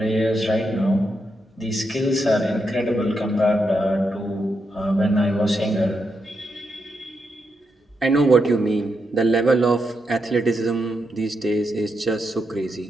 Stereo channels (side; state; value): both; normal; correlation 0.83